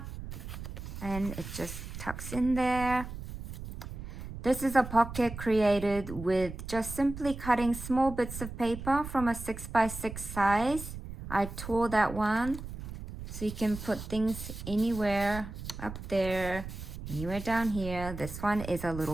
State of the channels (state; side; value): noise; right; rumble, 10 dB below the sound